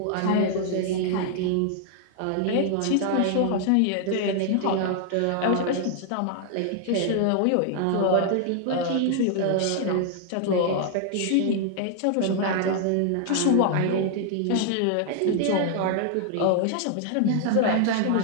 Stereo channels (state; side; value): different; both; correlation 0.00